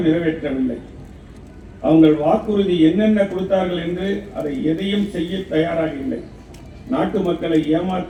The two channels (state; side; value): identical; both; correlation 1.00